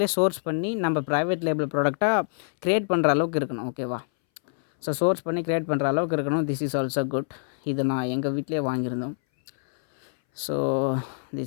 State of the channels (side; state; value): right; silent; 60 dB below the other